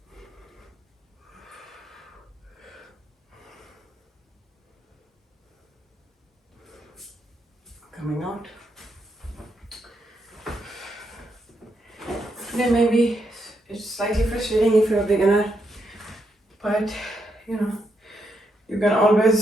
Coming out. Then maybe it's slightly frustrating if you're a beginner, but you know, you can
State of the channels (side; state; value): both; normal; correlation 0.80